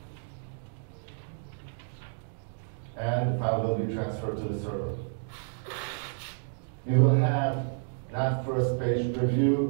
And the file will be transferred to the server. You will have not first page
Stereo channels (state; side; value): silent; left; digital silence